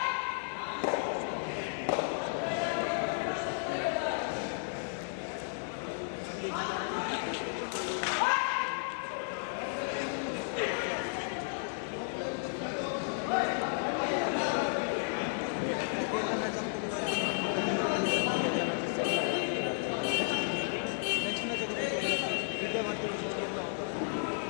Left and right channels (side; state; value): right; silent; digital silence